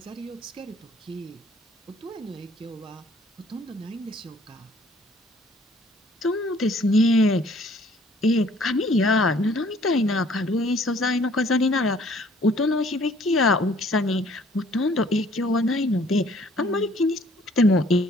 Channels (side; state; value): both; normal; correlation 0.58